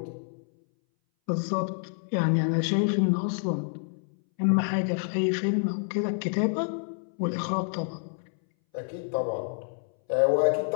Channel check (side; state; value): right; silent; 59 dB below the other